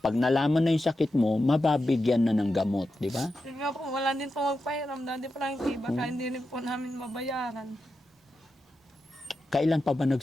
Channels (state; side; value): normal; both; correlation 0.89